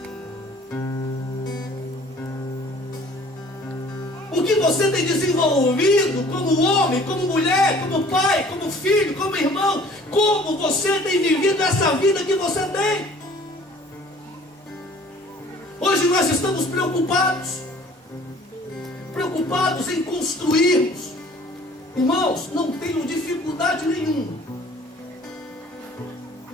O que você tem desenvolvido como homem, como mulher, como pai, como filho, como irmão? Como você tem vivido essa vida que você tem? Hoje nós estamos preocupados em construirmos. Irmãos, não tenham dificuldade nenhuma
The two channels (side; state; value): both; normal; correlation 0.52